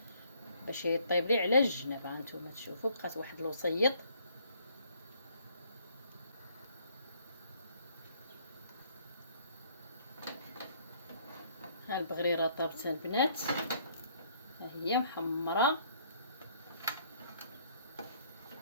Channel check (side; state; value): both; inverted; correlation -0.63